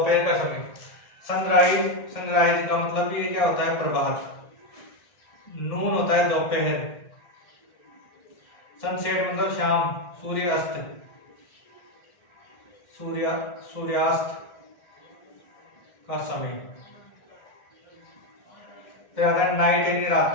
का समय। सनराइज का मतलब ये क्या होता है, प्रभात। नून होता है दोपहर। सनसेट मतलब शाम, सूर्यास्त का समय। फिर आता है नाइट यानी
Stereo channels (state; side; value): late; right; 1.6 ms